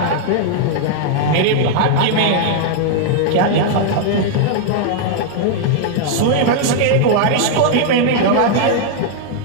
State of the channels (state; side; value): different; both; correlation -0.01